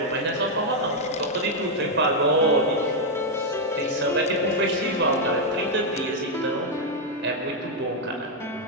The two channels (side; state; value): both; normal; correlation -0.01